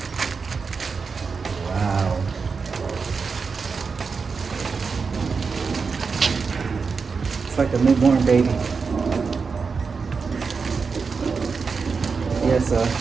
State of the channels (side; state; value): left; quieter; 5.1 dB